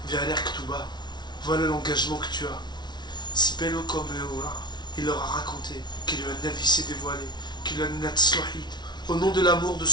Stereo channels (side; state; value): right; late; 0.20 ms